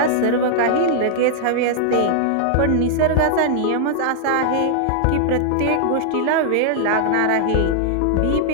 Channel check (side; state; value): both; different; correlation -0.01